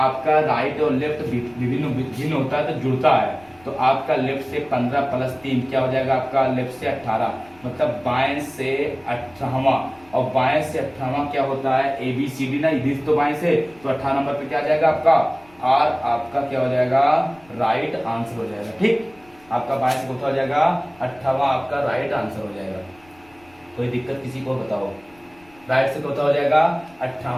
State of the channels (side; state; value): left; noise; rumble, 29 dB below the sound